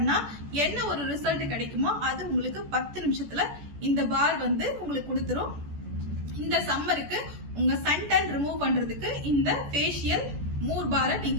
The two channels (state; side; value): late; left; 14 ms